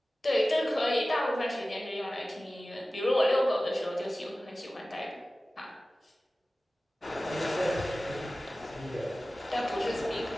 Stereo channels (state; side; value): normal; both; correlation 0.96